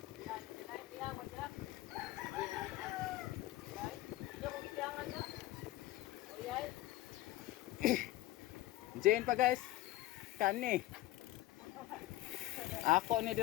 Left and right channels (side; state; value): right; quieter; 16.3 dB